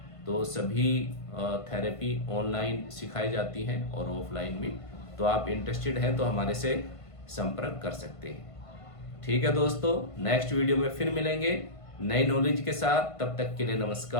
तो सभी थेरेपी ऑनलाइन सिखाई जाती हैं और ऑफलाइन भी। तो आप इंटरेस्टेड हैं तो हमारे से संपर्क कर सकते हैं। ठीक है दोस्तों, नेक्स्ट वीडियो में फिर मिलेंगे नई नॉलेज के साथ। तब तक के लिए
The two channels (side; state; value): right; late; 1.5 ms